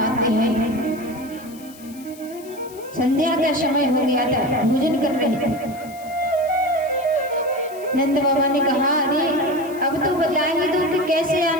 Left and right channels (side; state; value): left; noise; hiss, 21 dB below the sound